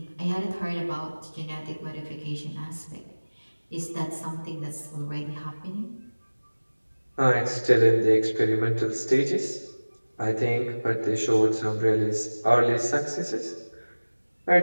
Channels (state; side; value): inverted; both; correlation -1.00